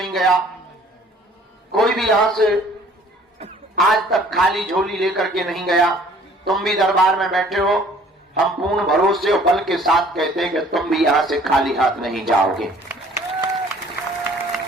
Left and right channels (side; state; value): both; normal; correlation 0.55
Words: गया, कोई भी यहां से आज तक खाली झोली लेकर के नहीं गया। तुम भी दरबार में बैठे हो, हम पूर्ण भरोसे और बल के साथ कहते हैं कि तुम भी यहां से खाली हाथ नहीं जाओगे।